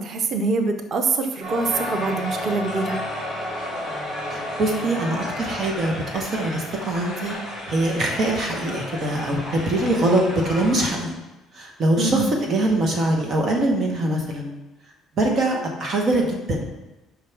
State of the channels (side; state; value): both; normal; correlation 0.64